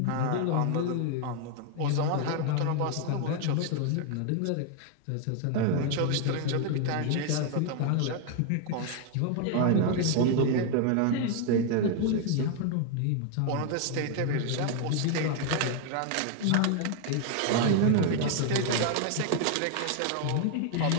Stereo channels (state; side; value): different; both; correlation 0.00